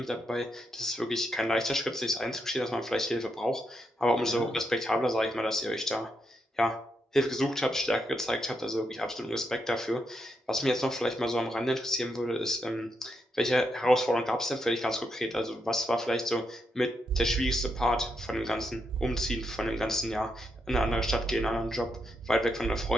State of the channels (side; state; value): both; normal; correlation 0.81